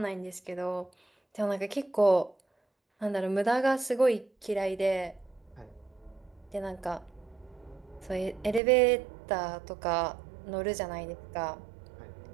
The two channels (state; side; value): drops out; left; at 8.6 s